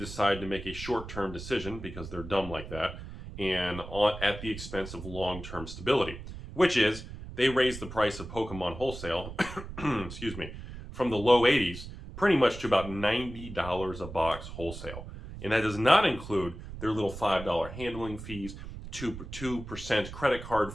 to make a short-term decision, because they're dumb like that, and at the expense of long-term stability, which is they raised the price of Pokemon wholesale, excuse me, from the low 80s pretty much to about $90 a box wholesale. And that does not include their little $5 handling fees, 2% credit card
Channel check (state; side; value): noise; right; rumble, 11 dB below the sound